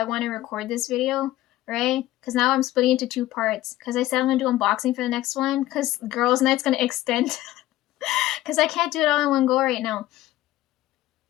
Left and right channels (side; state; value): right; quieter; 15.5 dB